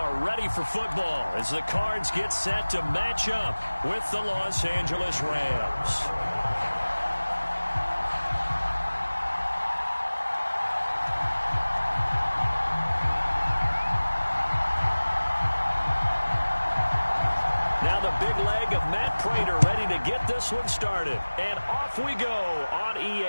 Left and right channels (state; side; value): inverted; both; correlation -1.00